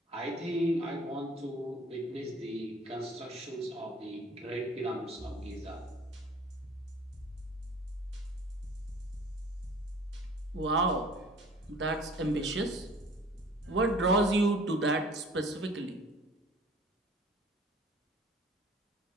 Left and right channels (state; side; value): normal; both; correlation 0.49